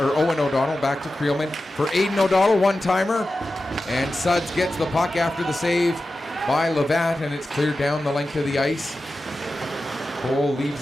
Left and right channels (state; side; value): normal; both; correlation 0.93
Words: O'Donnell, back to Creelman. For Aiden O'Donnell, one-timer. And Suds gets the puck after the save by Levatt, and it's cleared down the length of the ice. Cole leaves